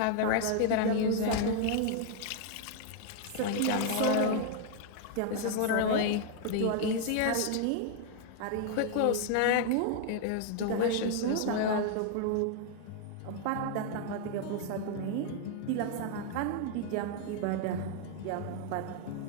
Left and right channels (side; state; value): both; different; correlation 0.00